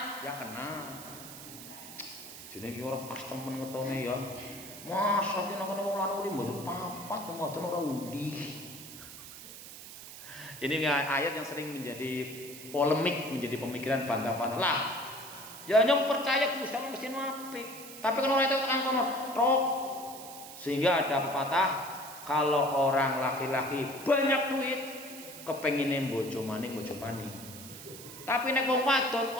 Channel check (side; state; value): right; noise; hiss, 13 dB below the sound